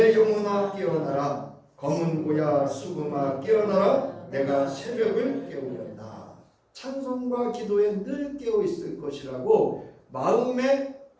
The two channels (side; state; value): both; identical; correlation 1.00